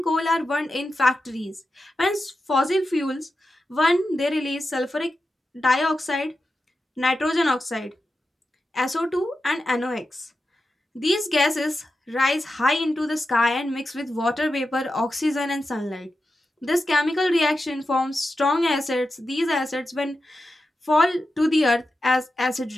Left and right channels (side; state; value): both; normal; correlation 0.90